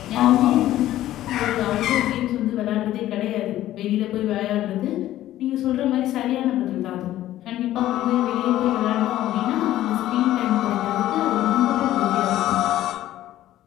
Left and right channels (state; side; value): quieter; right; 13.8 dB